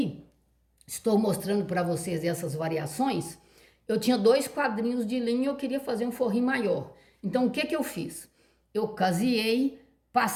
estou mostrando para vocês essas variações. Eu tinha 2 quadrinhos de linha e eu queria fazer um forrinho maior. Então, o que que eu fiz? Eu caseei,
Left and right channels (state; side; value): identical; both; correlation 1.00